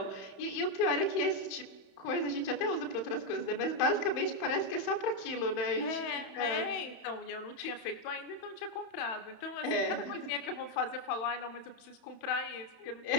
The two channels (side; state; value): right; late; 31 ms